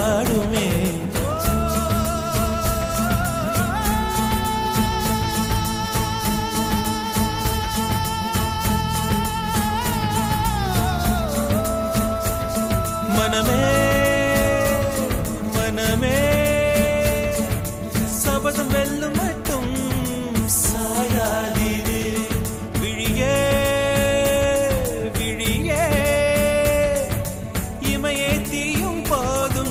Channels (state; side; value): identical; both; correlation 1.00